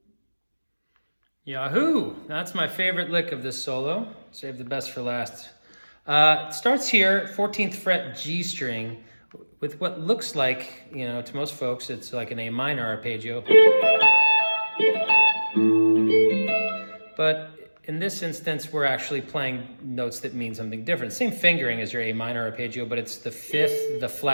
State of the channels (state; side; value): inverted; both; correlation -1.00